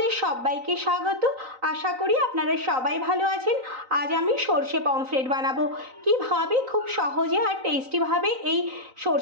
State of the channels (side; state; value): left; late; 3.9 ms